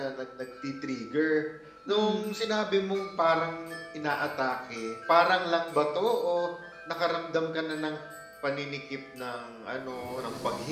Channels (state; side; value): identical; both; correlation 1.00